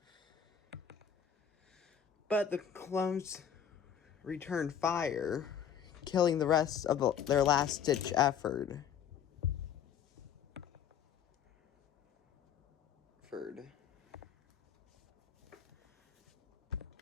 But the clones returned fire, killing the rest of their last-ditch effort.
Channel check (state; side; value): quieter; right; 8.4 dB